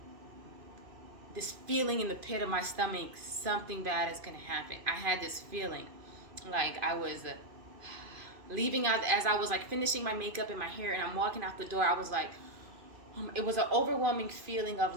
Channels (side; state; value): left; late; 2.5 ms